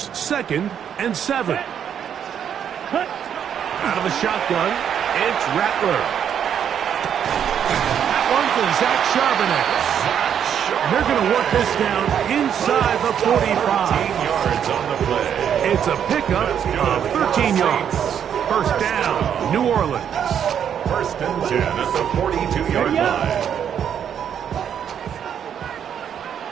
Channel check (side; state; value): left; quieter; 8.7 dB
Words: 2nd and 7. Out of the shotgun, it's Rattler. That one for Zach Charbonnet. And they're going to work this down inside the 45. 13 yards on the play. It's a pickup of 13 yards. First down, New Orleans. 1st and 10 at the 42-yard line.